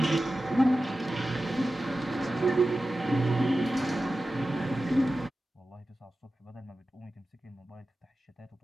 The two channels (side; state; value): both; normal; correlation 0.94